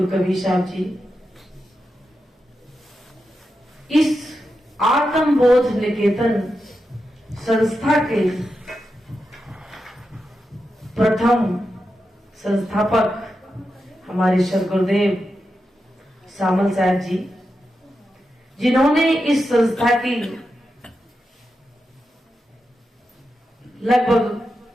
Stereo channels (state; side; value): normal; both; correlation 0.88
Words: कबीर साहब जी इस आत्मबोध निकेतन संस्था के प्रथम संस्थापक हमारे सद्गुरुदेव सामल साहब जी, जिन्होंने इस संस्था की लगभग